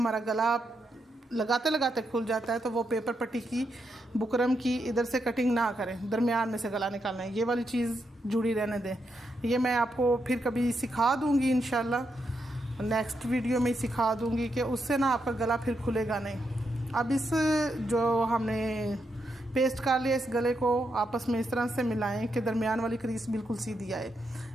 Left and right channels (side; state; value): both; normal; correlation 0.82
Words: गला लगाते लगाते खुल जाता है तो वो पेपर पट्टी की बुकरम की इधर से कटिंग ना करें, दरमियान में से गला निकालना है। ये वाली चीज़ जुड़ी रहने दें। ये मैं आपको फिर कभी सिखा दूँगी, इंशाल्लाह नेक्स्ट वीडियो में सिखा दूँगी कि उससे ना आपका गला फिर खुलेगा नहीं। अब इस जो हमने पेस्ट कर लिया, इस गले को आपस में इस तरह से मिलाएं कि दरमियान वाली क्रीज बिल्कुल सीधी आए।